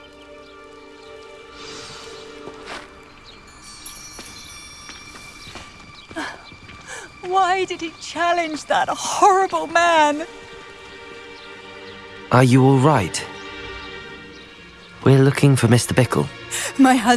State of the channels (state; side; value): identical; both; correlation 1.00